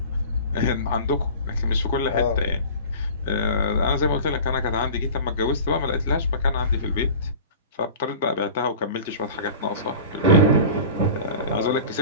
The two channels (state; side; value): inverted; both; correlation -0.38